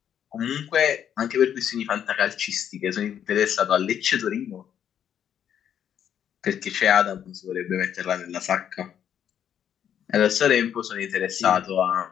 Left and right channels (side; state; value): right; quieter; 9.3 dB